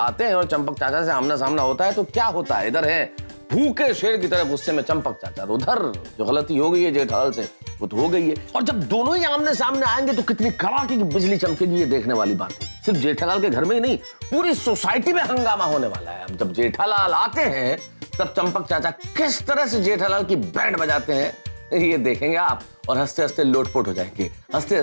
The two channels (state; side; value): inverted; both; correlation -1.00